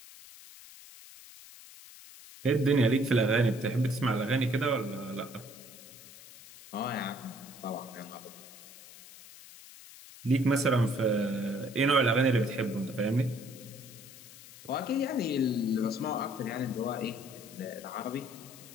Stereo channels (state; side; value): noise; left; hiss, 18 dB below the sound